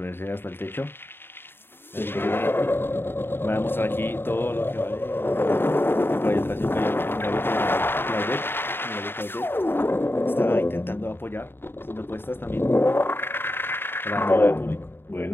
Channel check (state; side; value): late; right; 0.11 ms